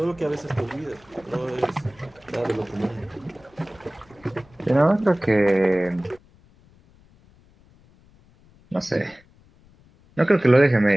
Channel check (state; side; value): noise; left; rumble, 29 dB below the sound